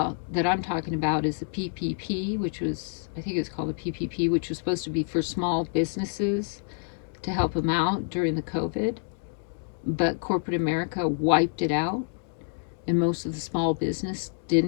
that I'm talking about is the PPP, which was, I think it's called the PPP, which was supposed to be for small businesses to help them out during the COVID. But corporate America wiped it out, and most of the small business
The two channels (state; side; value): silent; right; digital silence